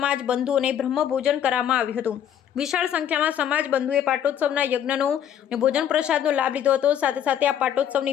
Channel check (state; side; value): quieter; right; 9.7 dB